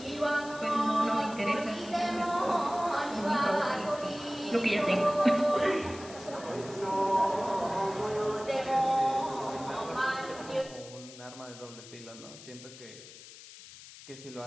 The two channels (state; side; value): noise; left; hiss, 17 dB below the sound